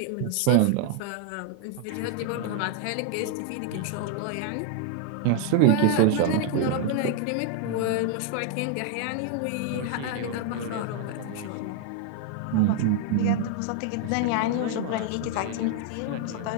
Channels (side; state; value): both; different; correlation 0.00